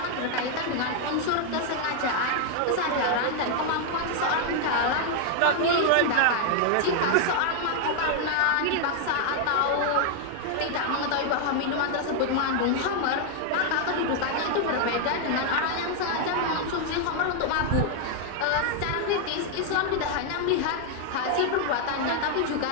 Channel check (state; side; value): different; both; correlation 0.00